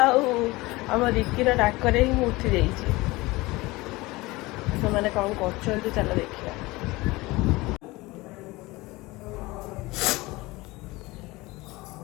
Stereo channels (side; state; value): right; quieter; 21.4 dB